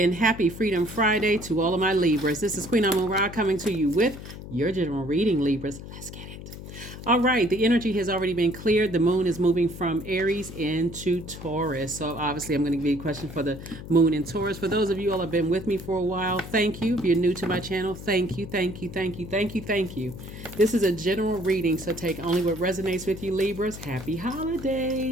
happy Freedom Friday to all of my Libras. This is Queen Amun Ra coming to you with your general reading, Libras. Let's get it. All right, the energy has already been cleared. The moon is moving from Aries into Taurus. So obviously I'm going to give you a question for the moon in Taurus. For those of you all who have been with me for a while, thank you. If you're new to my channel, thank you, thank you, thank you, thank you, thank you. This is a general reading, so take only what resonates with you, Libras. Happy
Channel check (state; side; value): noise; left; hum, 12 dB below the sound